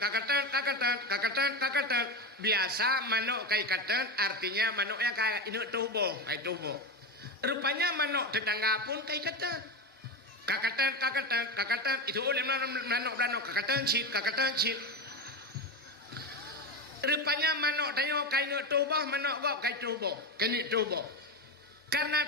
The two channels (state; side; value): normal; both; correlation 0.18